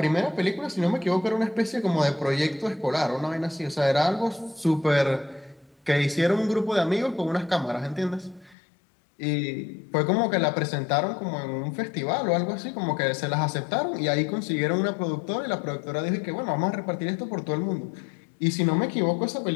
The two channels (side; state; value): right; drops out; at 8.6 s